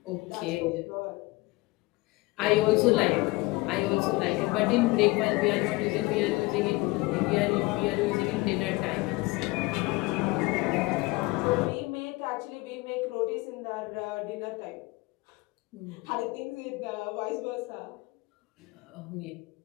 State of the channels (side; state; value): right; quieter; 22.7 dB